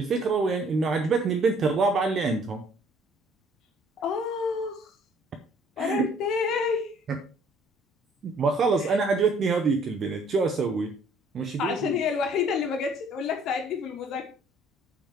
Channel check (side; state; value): both; normal; correlation 0.59